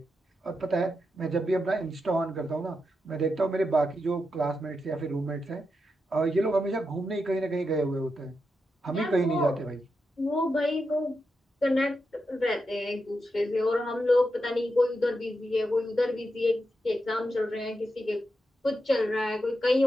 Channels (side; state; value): both; normal; correlation 0.86